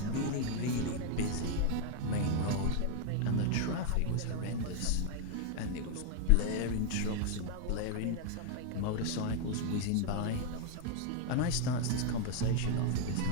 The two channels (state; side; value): different; both; correlation 0.00